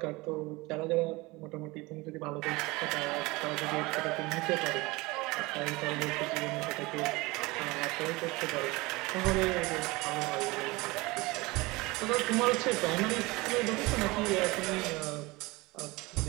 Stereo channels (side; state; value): left; quieter; 22.8 dB